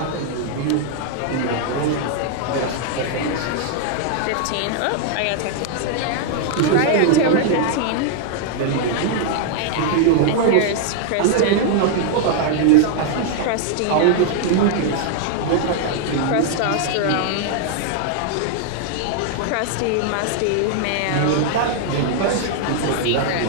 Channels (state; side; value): different; both; correlation 0.00